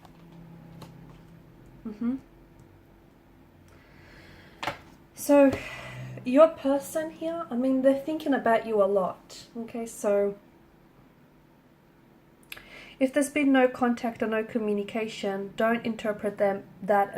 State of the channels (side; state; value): both; identical; correlation 1.00